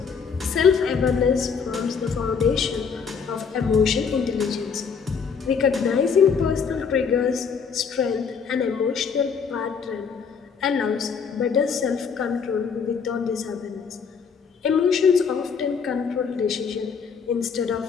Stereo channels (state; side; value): quieter; right; 6.0 dB